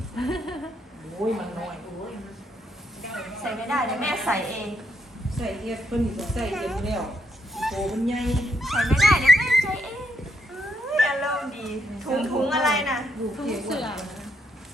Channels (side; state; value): both; normal; correlation 0.77